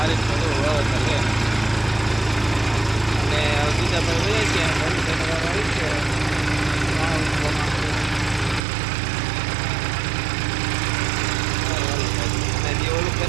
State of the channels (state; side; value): drops out; left; at 8.6 s